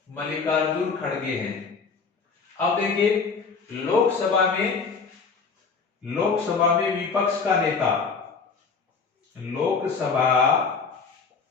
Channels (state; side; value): quieter; right; 5.1 dB